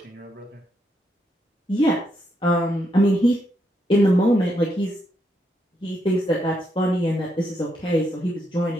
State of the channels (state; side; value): normal; both; correlation 0.79